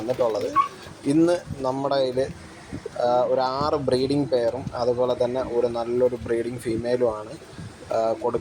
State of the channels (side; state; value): both; identical; correlation 1.00